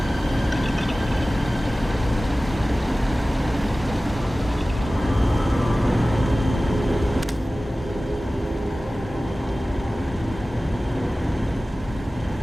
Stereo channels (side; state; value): both; normal; correlation 0.97